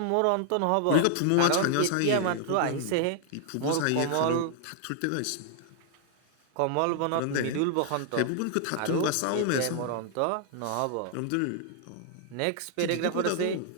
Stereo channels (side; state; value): both; different; correlation 0.00